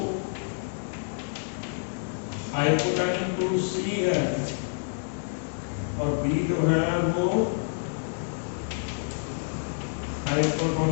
हाइपोटोनिक टू C है, और B जो है वो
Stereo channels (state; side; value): silent; right; digital silence